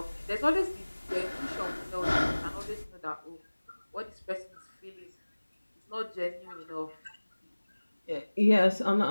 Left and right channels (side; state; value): both; inverted; correlation -1.00